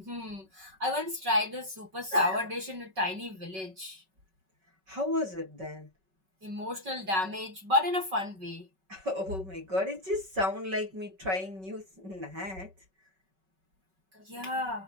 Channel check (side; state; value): left; late; 5.3 ms